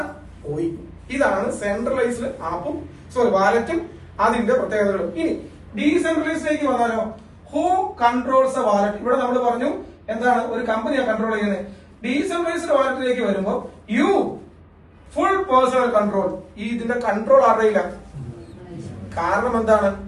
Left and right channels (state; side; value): identical; both; correlation 1.00